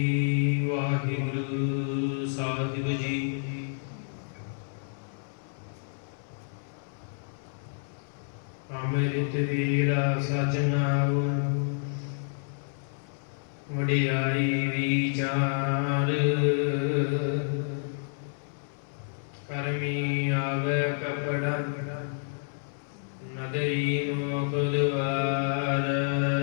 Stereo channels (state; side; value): silent; right; 58 dB below the other